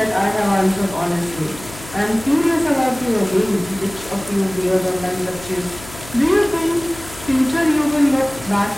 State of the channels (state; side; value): noise; left; hum, 17 dB below the sound